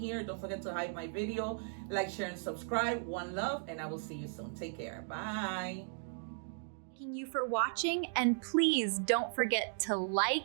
Don't forget to hype my video, like, share, and subscribe. One love, and I will see you soon. Take care. Bye. Thanking you for watching, and please don't forget to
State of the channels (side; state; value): left; silent; digital silence